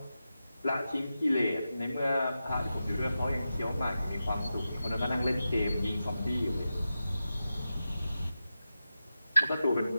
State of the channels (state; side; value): inverted; both; correlation -0.91